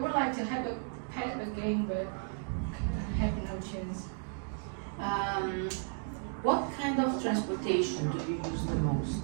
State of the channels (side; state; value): left; silent; 55 dB below the other